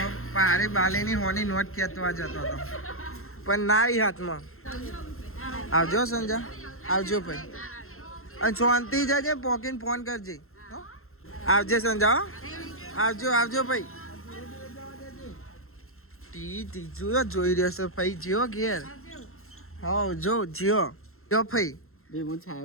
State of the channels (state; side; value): late; right; 0.62 ms